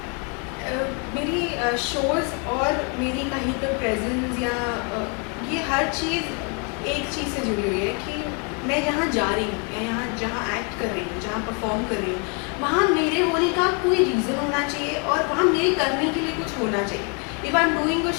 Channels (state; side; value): quieter; right; 36.0 dB